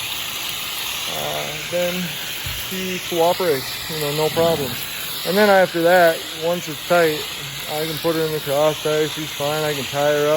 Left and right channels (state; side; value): identical; both; correlation 1.00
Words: then she cooperates, no problem. And then after that, once it's tight, I can put her in the cross tie, she's fine. I can tie her